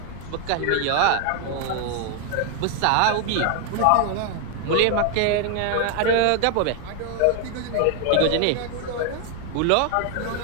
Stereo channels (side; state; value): both; different; correlation 0.00